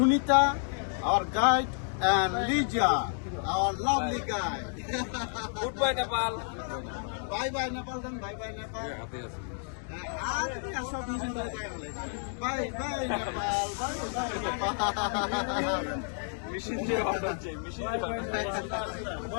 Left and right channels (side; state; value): right; silent; 57 dB below the other